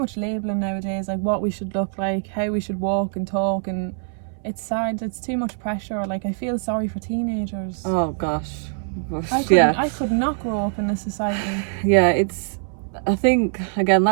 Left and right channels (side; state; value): left; silent; 61 dB below the other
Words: labelling nowadays, like what we should look like, how we should walk and talk, and it's sad. It's too much pressure. Like, I feel sorry for teenagers. Oh gosh. I could not grow up in this society. Yeah, I think, again,